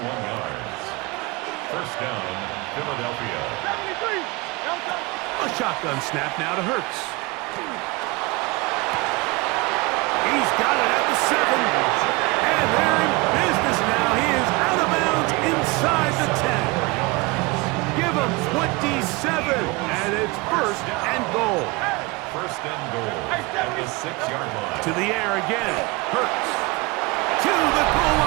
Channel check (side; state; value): left; quieter; 24.7 dB